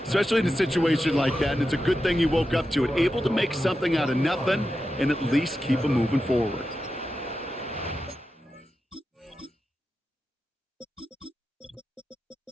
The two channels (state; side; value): normal; both; correlation 0.90